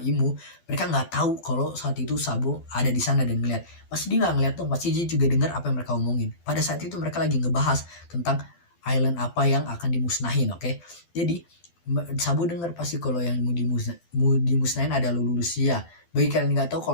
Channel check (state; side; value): late; right; 12 ms